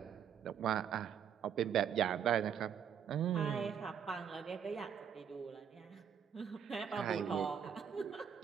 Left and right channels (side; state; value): left; quieter; 8.1 dB